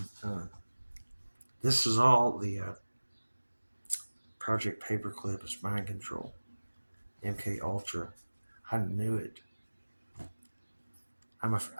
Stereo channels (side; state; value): both; inverted; correlation -1.00